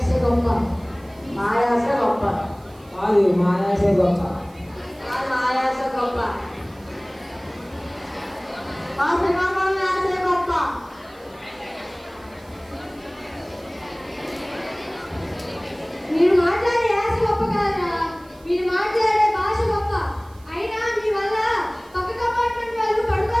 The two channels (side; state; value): right; noise; hiss, 28 dB below the sound